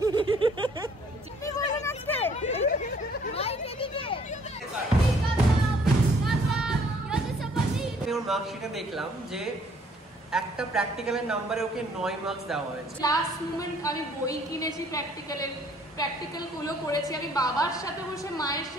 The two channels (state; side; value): normal; both; correlation 0.61